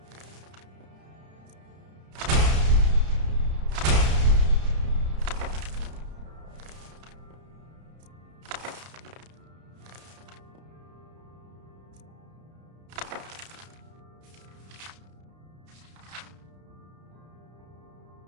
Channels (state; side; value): late; left; 32 ms